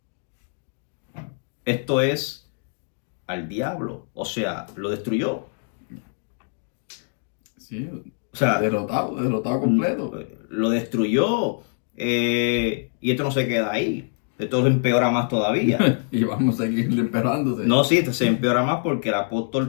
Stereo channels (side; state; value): right; silent; 62 dB below the other